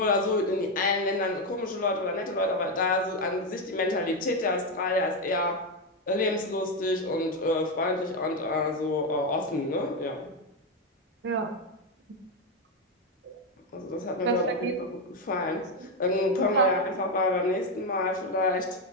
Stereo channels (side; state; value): both; normal; correlation 0.07